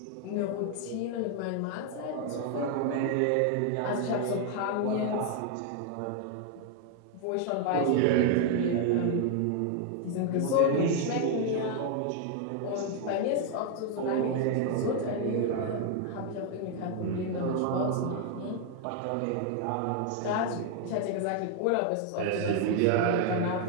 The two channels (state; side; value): different; both; correlation 0.00